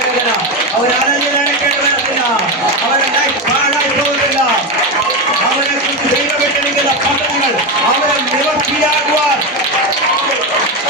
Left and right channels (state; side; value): normal; both; correlation 0.13